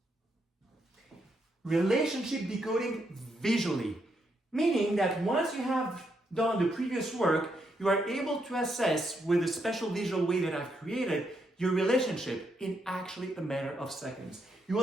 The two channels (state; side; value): normal; both; correlation 0.78